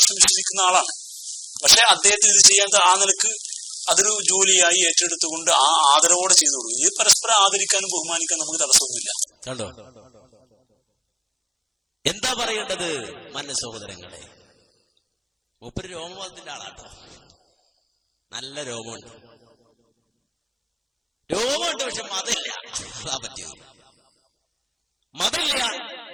വിശ്വസിക്കുന്ന ആളാണ്. പക്ഷെ അദ്ദേഹത്തിന് ഇത് ചെയ്യാൻ ആ നിലക്ക് അതൊരു ജോലിയായി ഏറ്റെടുത്തുകൊണ്ട് ആ ആദരവോടെ ചെയ്തു കൊടുക്കും. ഇത് പരസ്പരം ആദരിക്കാനും ബഹുമാനിക്കാനും നമുക്ക് തടസ്സമൊന്നുമില്ല. കണ്ടോ എന്താ പറയേണ്ടത്? മാന്യ സഹോദരങ്ങളെ, മൂപ്പര് രോമവാദത്തിന്റെ ആളാട്ടോ. നല്ല രോമമുണ്ട്, പക്ഷെ മതമില്ല. അതാ പറ്റിയത്. മതമില്ല.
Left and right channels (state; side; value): identical; both; correlation 1.00